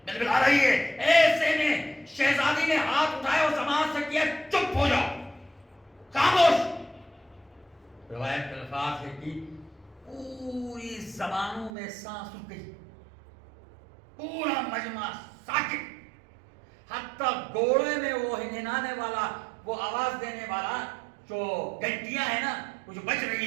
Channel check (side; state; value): left; drops out; at 11.7 s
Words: آ رہی ہے، ایسے میں شہزادی نے ہاتھ اٹھائے اور زبان سے کیا چپ ہو جاؤ، خاموش۔ روایت کے الفاظ ہے کہ پوری زبانوں میں سانس رک گئی، پورا مجمع ساکت، حتیٰ گھوڑے میں وہ ہنہنانے والا، وہ آواز دینے والا جو گھنٹیاں ہیں نا، وہ جو بج